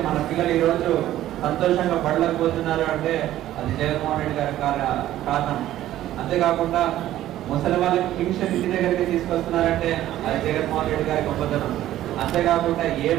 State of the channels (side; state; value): left; quieter; 13.5 dB